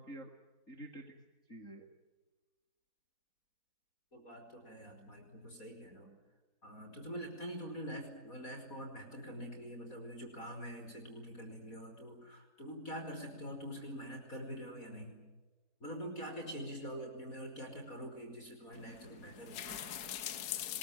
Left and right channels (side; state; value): right; late; 4.7 ms